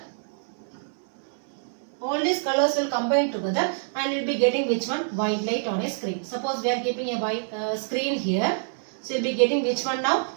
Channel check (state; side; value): silent; left; 61 dB below the other